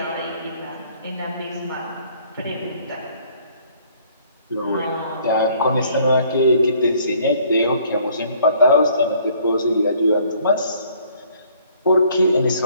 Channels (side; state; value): both; inverted; correlation -0.60